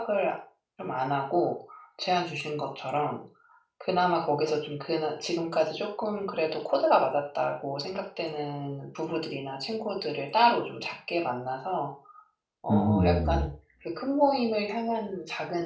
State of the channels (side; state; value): both; identical; correlation 1.00